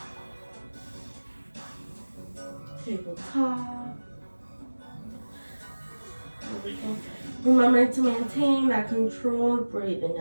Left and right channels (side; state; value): both; inverted; correlation -1.00